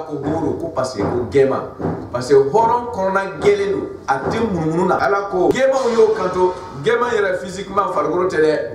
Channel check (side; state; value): both; identical; correlation 1.00